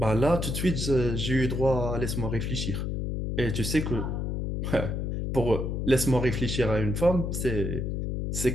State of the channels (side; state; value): left; noise; hum, 2 dB below the sound